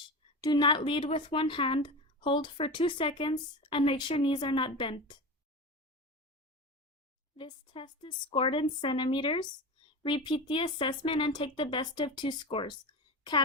do not lead with one hand, hold for 2 seconds, and make sure knees are not bent. This test is scored in centimeters. Repeat the assessment and take the best of 2 scores.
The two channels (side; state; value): both; normal; correlation 0.26